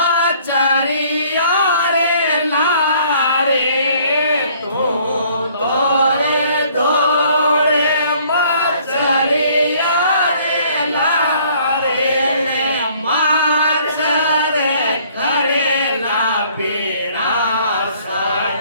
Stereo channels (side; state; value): both; inverted; correlation -0.59